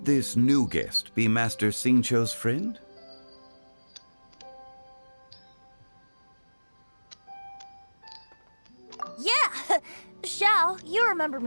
this new guest be Master Xingqiu's friend? Yeah! Xiao, you remember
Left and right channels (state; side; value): inverted; both; correlation -1.00